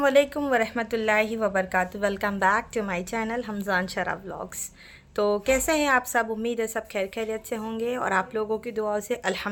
वरहमतुल्लाहि वबरकातुहू। Welcome back to my channel Hamzan Shara vlogs. तो कैसे हैं आप सब? उम्मीद है सब खैर खैरियत से होंगे और आप लोगों की दुआओं से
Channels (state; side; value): identical; both; correlation 1.00